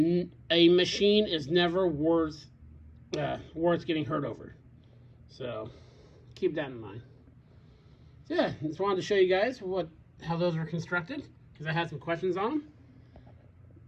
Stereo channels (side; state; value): both; identical; correlation 1.00